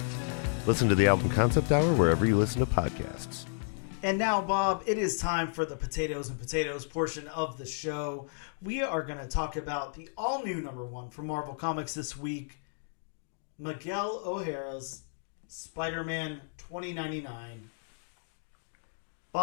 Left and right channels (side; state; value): right; silent; digital silence